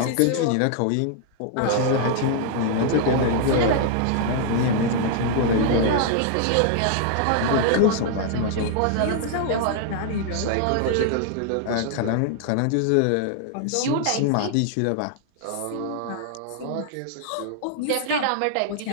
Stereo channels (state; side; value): different; both; correlation 0.00